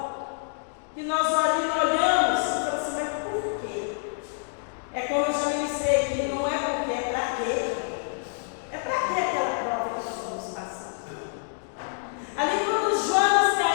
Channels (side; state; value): right; silent; digital silence